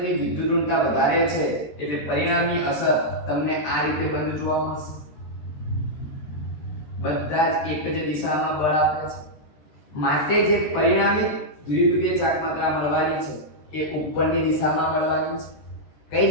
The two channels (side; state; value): right; late; 13 ms